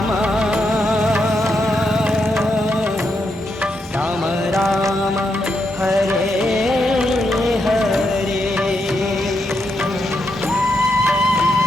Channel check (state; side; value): normal; both; correlation 0.82